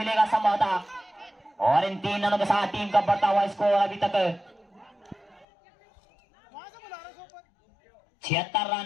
संभवतः, और इन 3 रनों के साथ टीम का बढ़ता हुआ स्कोर अभी तक 76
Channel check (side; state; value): right; drops out; at 5.5 s